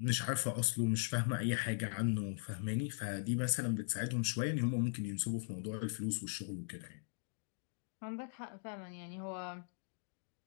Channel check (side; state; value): right; silent; digital silence